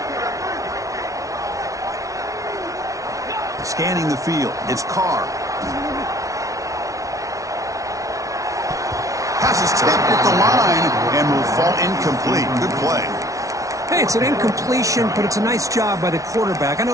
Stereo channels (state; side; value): late; left; 0.16 ms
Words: Scanning the field, it's Carr. Pass is tipped at the line and will fall incomplete. Good play. Hey, it's an incompletion, but it's a nice job by the quarterback. I know